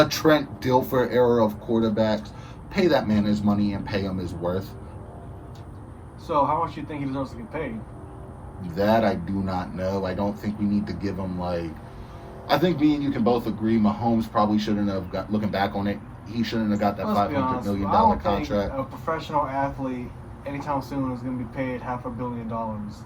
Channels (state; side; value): identical; both; correlation 1.00